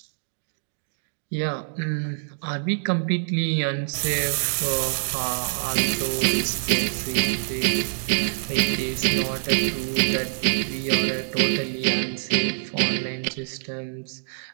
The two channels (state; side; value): silent; left; digital silence